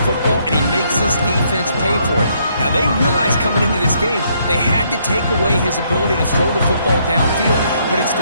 football, and he makes his defense pay for it. Now, they realized coming into this game, they had to take away his ability to throw the football downfield. But it's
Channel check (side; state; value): both; inverted; correlation -0.71